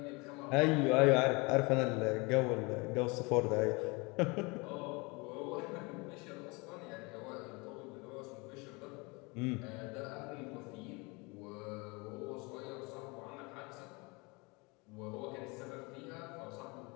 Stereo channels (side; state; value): right; quieter; 27.5 dB